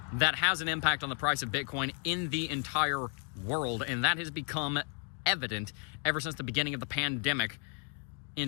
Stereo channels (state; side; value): quieter; right; 35.5 dB